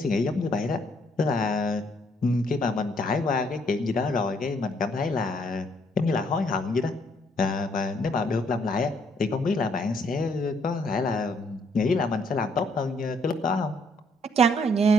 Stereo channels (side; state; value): both; normal; correlation 0.68